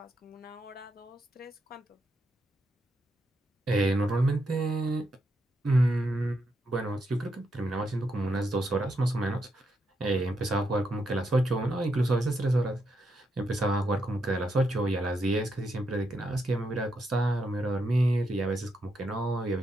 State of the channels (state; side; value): normal; both; correlation 0.81